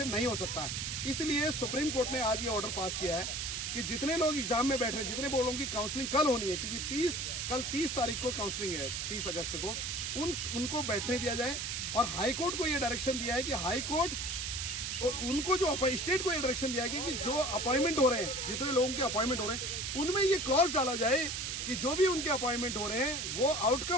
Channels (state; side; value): noise; right; hiss, 3 dB below the sound